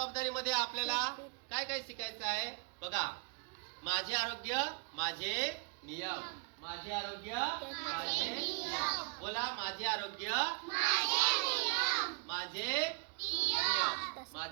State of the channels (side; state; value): left; quieter; 35.9 dB